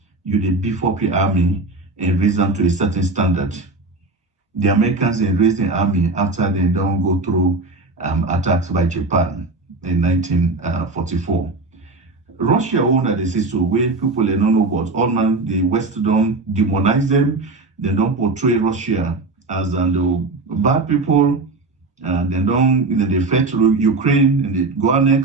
you dey beef up your army and raise them to a certain standard. The Americans raised the army after they don't go through attacks by Japan in 1944. Russia owned the system where people they don't know about all man, the West don't demonize them, they don't portray Russia as bad people, they don't they fight Ukraine and they go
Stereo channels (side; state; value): left; quieter; 3.3 dB